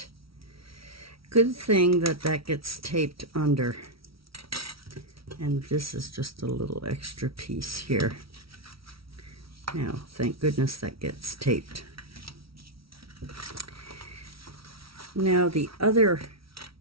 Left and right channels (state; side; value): late; left; 0.75 ms